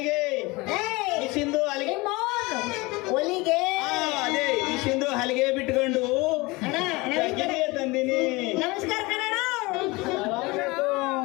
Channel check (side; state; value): right; quieter; 23.5 dB